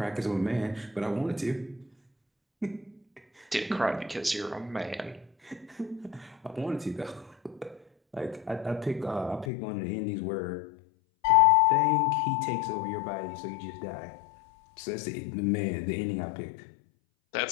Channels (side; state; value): right; drops out; at 9.5 s